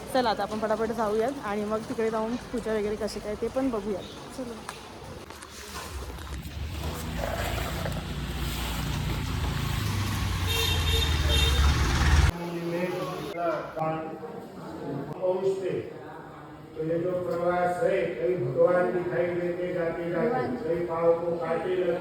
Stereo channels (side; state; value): both; identical; correlation 1.00